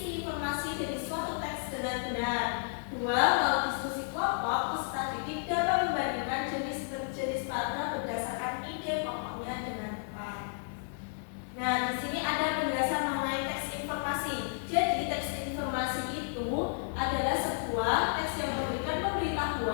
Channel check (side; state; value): right; silent; digital silence